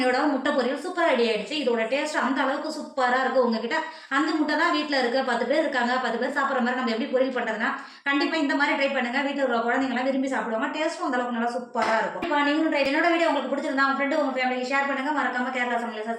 முட்டை பொரியல் சூப்பராக ரெடி ஆகிடுச்சு. இதோட டேஸ்ட் அந்த அளவுக்கு சூப்பராக இருக்குது. உங்ககிட்ட அந்த முட்டை தான் வீட்டில் இருக்குது, 10 பேர் இருக்காங்க, 10 பேர் சாப்பிட்ற மாதிரி நம்ம எப்படி பொரியல் பண்ணுறதுனா கண்டிப்பாக இந்த மாதிரி ட்ரை பண்ணுங்கள். வீட்டில் இருக்கிற குழந்தைங்களாம் விரும்பி சாப்பிடுவாங்க. டேஸ்ட்டும் அந்த அளவுக்கு நல்லா சூப்பராக இருக்கும். இப்போ நீங்களும் ட்ரை. என்னோட வீடியோ உங்களுக்கு பிடிச்சிருந்தா உங்கள் ஃப்ரெண்டு உங்கள் ஃபேமிலிக்கு ஷேர் பண்ணுங்கள். மறக்காமல் கேரளா சமையலை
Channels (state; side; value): identical; both; correlation 1.00